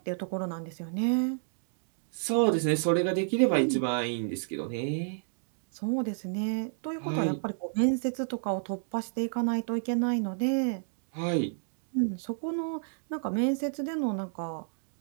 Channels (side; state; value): left; silent; digital silence